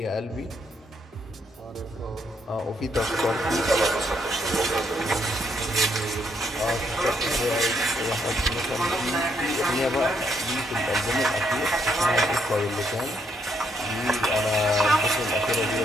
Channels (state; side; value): normal; both; correlation 0.73